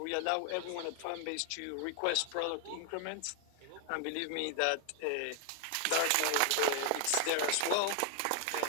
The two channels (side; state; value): both; different; correlation 0.00